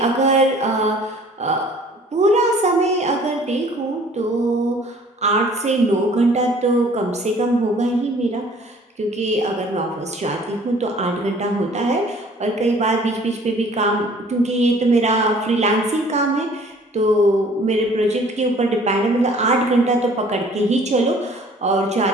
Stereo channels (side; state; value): both; normal; correlation 0.53